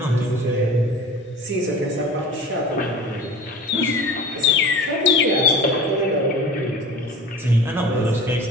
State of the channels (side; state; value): both; normal; correlation 0.38